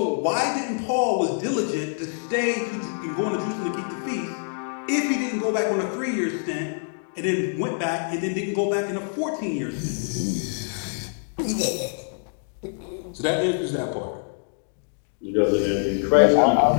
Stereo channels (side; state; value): right; silent; digital silence